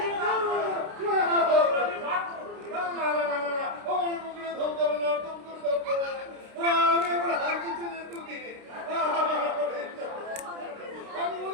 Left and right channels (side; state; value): left; late; 29 ms